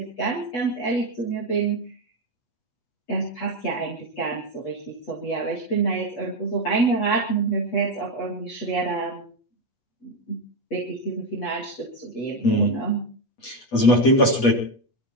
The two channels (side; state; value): right; late; 8.2 ms